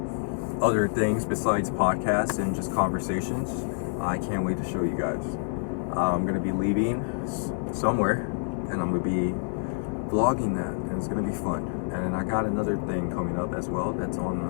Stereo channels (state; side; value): silent; right; digital silence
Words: other things besides podcasts and just conversations. I can't wait to show you guys. I'm gonna be leaving somewhere, and I'm gonna be vlogging that, and it's gonna be fun. And I got another thing coming up as well that's on